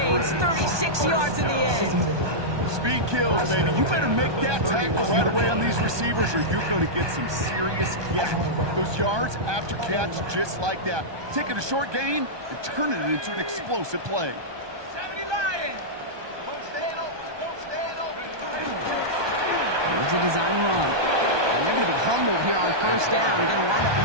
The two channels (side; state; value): left; late; 1.2 ms